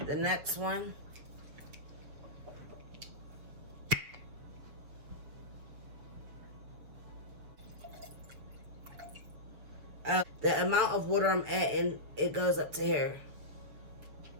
The next one. The amount of water I'm adding, it goes up to here.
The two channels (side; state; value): left; late; 7.1 ms